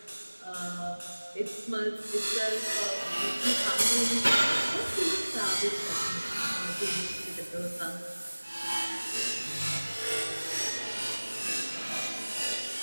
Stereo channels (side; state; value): both; inverted; correlation -1.00